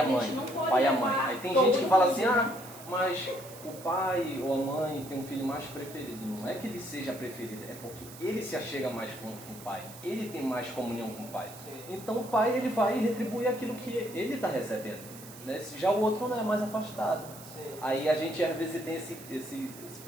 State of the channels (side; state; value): right; noise; hiss, 16 dB below the sound